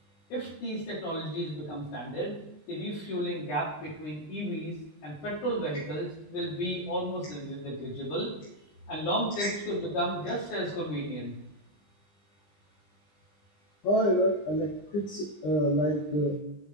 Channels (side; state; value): right; late; 20 ms